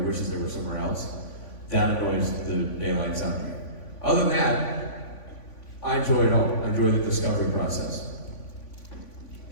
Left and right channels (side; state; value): right; late; 3.5 ms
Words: they were somewhere else. That annoys the daylights out of me. Other than that, I enjoy it all. I enjoy the discovery process.